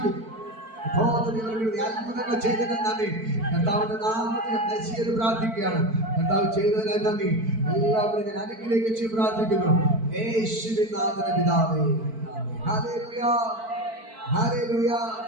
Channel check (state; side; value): late; left; 4.5 ms